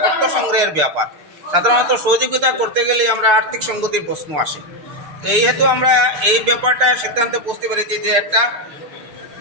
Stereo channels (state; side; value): late; left; 6.8 ms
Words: অর্থ সংগ্রহের ব্যাপার, সাধারণত সহযোগিতা করতে গেলে আমরা আর্থিক সঙ্গতির প্রশ্ন আসে। তো এই হেতু আমরা এই ব্যাপারটা সিদ্ধান্তে পৌঁছতে পেরেছি যে একটা